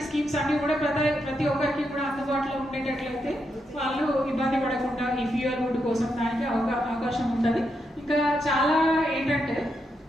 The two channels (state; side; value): normal; both; correlation 0.82